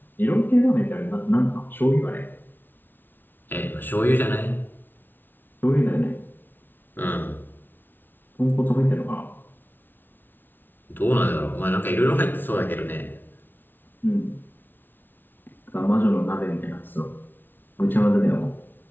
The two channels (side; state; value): right; late; 0.094 ms